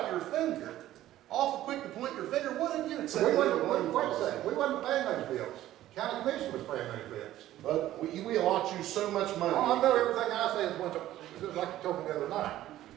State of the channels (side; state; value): left; quieter; 13.9 dB